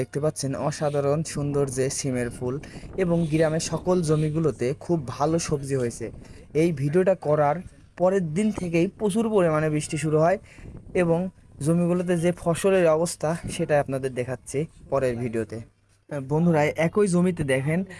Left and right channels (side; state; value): both; identical; correlation 1.00